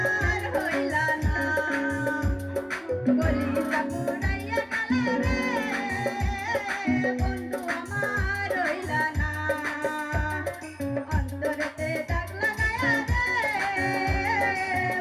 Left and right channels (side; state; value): both; identical; correlation 1.00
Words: হইলা না কলিজা পুরাইয়া গেলা রে বন্ধু আমার হইলা না অন্তরেতে দাগ লাগায়া রে